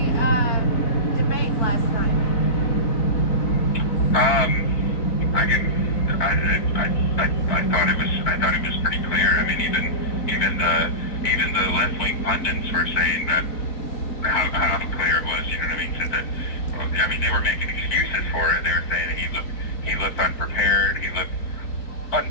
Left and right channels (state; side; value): late; right; 4.5 ms